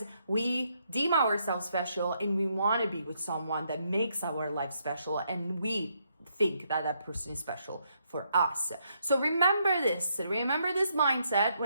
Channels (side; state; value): both; inverted; correlation -0.76